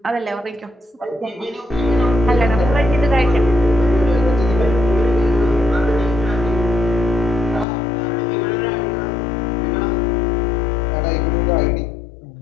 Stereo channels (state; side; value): drops out; right; at 7.7 s